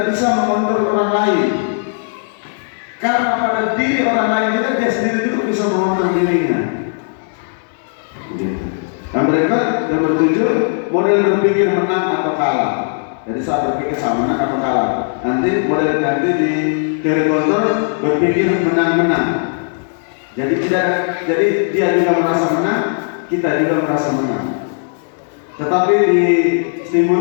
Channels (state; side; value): silent; right; digital silence